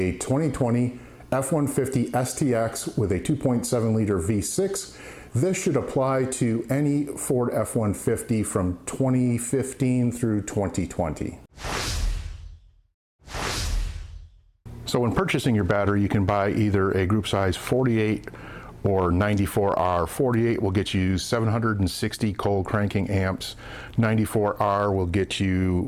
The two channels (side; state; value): both; identical; correlation 1.00